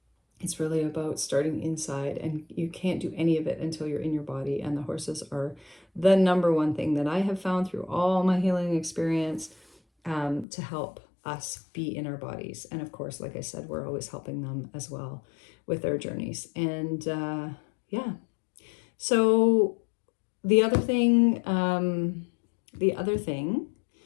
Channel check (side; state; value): right; drops out; at 10.5 s